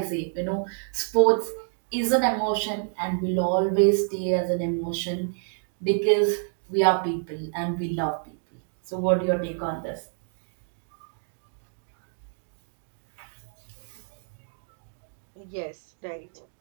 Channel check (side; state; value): left; silent; digital silence